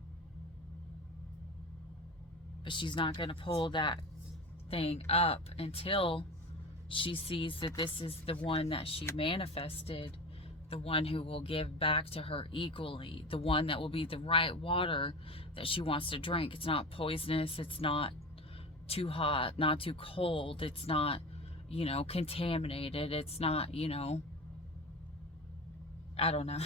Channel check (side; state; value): both; normal; correlation 0.30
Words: But she's not going to pull that thing up until she sees that this is the one that she manifested, the one who will give back to her equally, the one that will be the right water that she wants to drink. It's not poisonous, it's not too hot, not too cold, it's not, you know, contaminated, it's not, you know, I don't know.